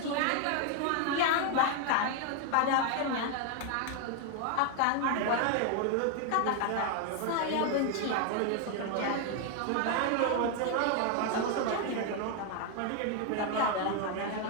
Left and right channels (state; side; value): different; both; correlation 0.01